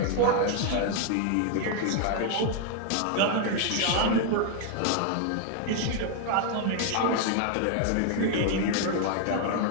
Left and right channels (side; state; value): both; different; correlation 0.00